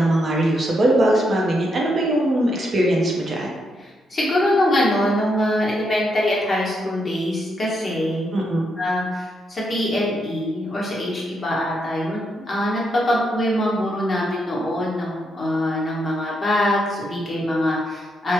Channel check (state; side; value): normal; both; correlation 0.79